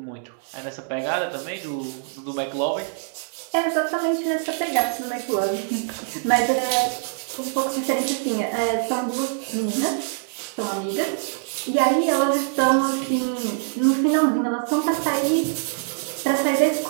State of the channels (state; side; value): silent; left; digital silence